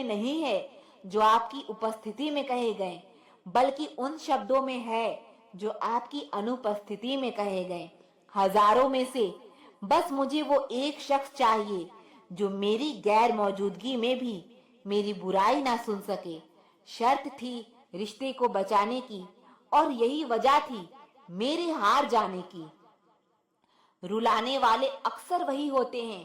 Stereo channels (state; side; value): identical; both; correlation 1.00